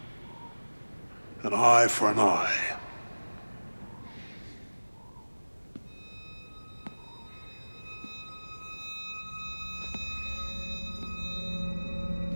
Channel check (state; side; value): inverted; both; correlation -1.00